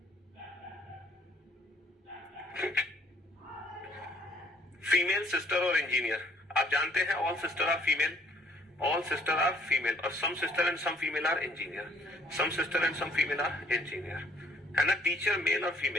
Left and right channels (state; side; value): normal; both; correlation 0.60